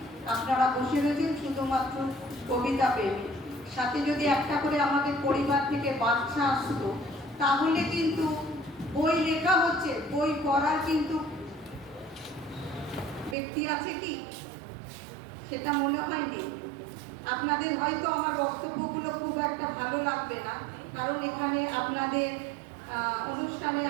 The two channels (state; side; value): drops out; left; at 13.4 s